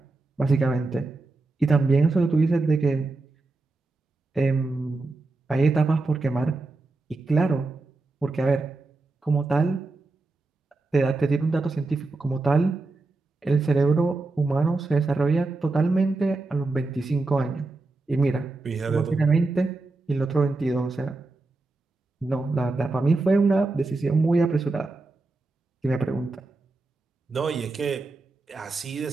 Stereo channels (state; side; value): quieter; left; 3.4 dB